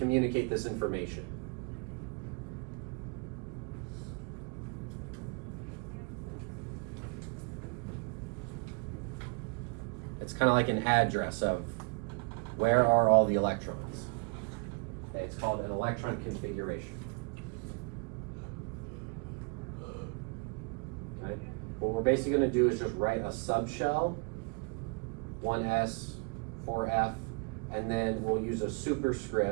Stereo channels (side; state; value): left; quieter; 33.6 dB